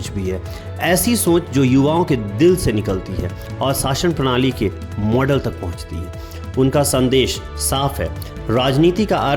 भी है, ऐसी सोच जो युवाओं के दिल से निकलती है और शासन प्रणाली के मॉडल तक पहुंचती है। उनका संदेश साफ है, राजनीति का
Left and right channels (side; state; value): both; identical; correlation 1.00